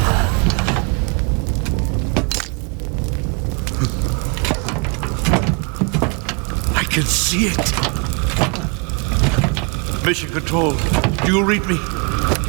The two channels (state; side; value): quieter; left; 33.9 dB